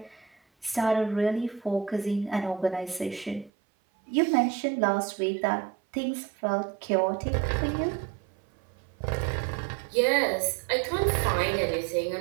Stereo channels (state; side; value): drops out; left; at 3.5 s